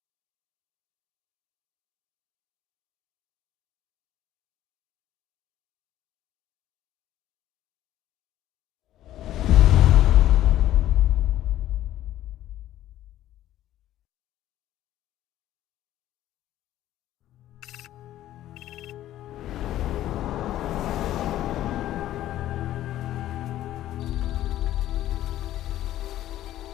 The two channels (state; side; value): quieter; right; 13.3 dB